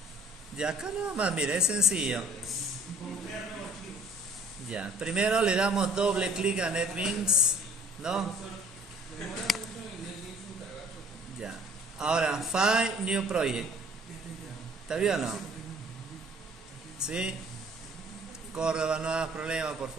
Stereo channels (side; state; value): both; normal; correlation 0.54